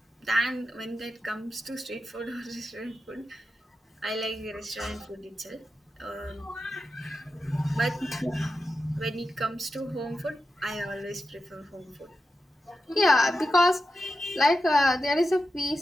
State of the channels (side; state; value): both; normal; correlation 0.90